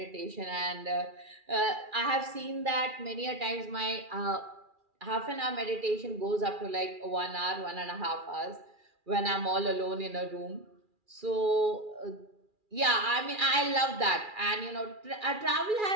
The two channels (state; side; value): late; left; 2.4 ms